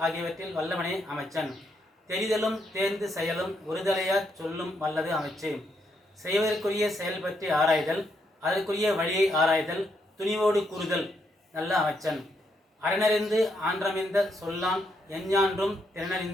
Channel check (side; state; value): both; normal; correlation 0.77